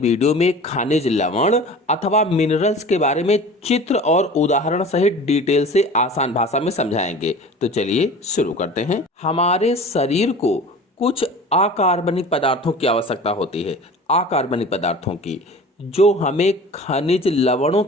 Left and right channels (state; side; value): normal; both; correlation 0.40